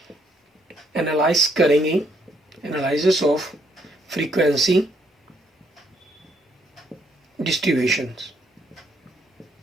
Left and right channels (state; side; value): normal; both; correlation 0.71